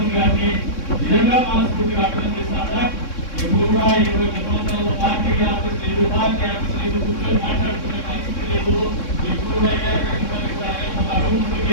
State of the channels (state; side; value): late; right; 3.6 ms